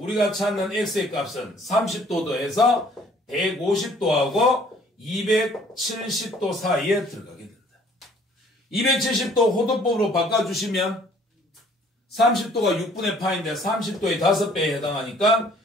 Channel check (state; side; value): normal; both; correlation 0.57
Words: 찾는 x의 값은 30도 더해서 150도하고 270도 사이에 들어가게 된다. 270도 호도법으로 바꿔주시면 30도가 6분의 파인데 30도의 5배에 해당하니까